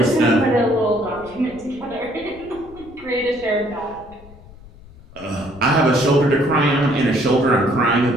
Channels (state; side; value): noise; left; rumble, 21 dB below the sound